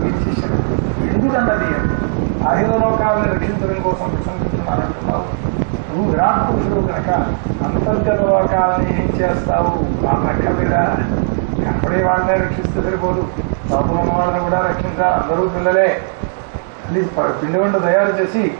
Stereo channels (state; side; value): silent; left; digital silence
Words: ఎందుకన్నది అఖిల లోకాలను రక్షించడం కోసం విశ్వసిస్తున్నానంటున్నావు. నువ్వు విరాట్ పురుషుడు కనుక అంతర్గత లోకాలని ఏం చేస్తావు? వాళ్ళని అక్కర్లేదా? అప్పుడే వాళ్ళనే రక్షిస్తే సరిపోదు, లోపల ఉన్న వాళ్ళని కూడా రక్షించాలి. అందరూ పిల్లలే. పిండి వంట తయారు చేసి